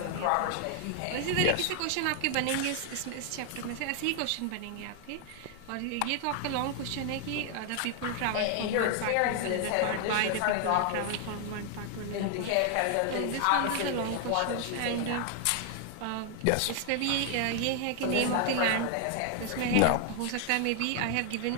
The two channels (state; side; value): different; both; correlation 0.00